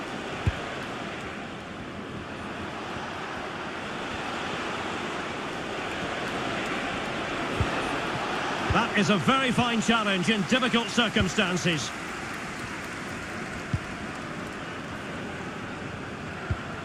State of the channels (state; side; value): identical; both; correlation 1.00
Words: That is a very fine challenge in difficult circumstances.